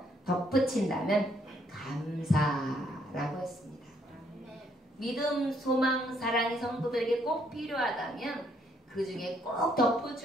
덧붙인다면 감사라고 했습니다. 믿음, 소망, 사랑이 성도들에게 꼭 필요하다면 그 중에 꼭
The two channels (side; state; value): both; normal; correlation 0.69